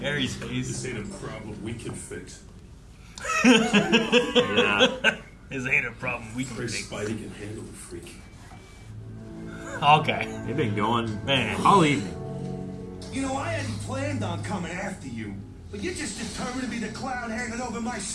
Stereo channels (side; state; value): both; identical; correlation 1.00